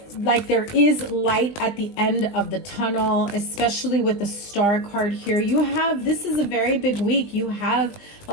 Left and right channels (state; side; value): late; right; 20 ms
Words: there is light at the end of the tunnel, especially with the Star card here. This is a very big week. You have